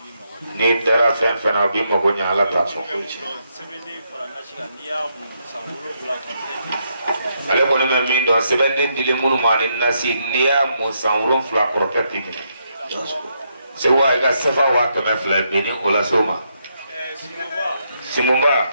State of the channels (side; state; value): both; inverted; correlation -0.78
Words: ni dara fen fena bi mo go nya ala ta so ale ko ni min do sebeden dile munu ma ni nasi niya mo sanwron fla korotati ni se wa ga sefa wa to me fla be ni ola soma simumba